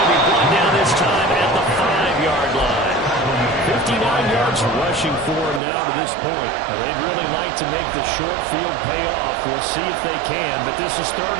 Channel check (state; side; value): drops out; left; at 5.6 s